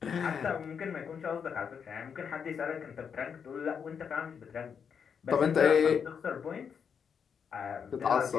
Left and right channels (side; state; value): right; quieter; 6.9 dB